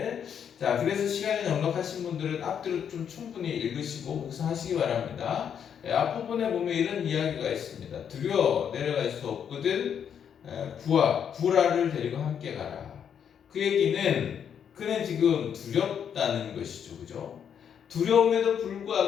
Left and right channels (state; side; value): quieter; right; 8.2 dB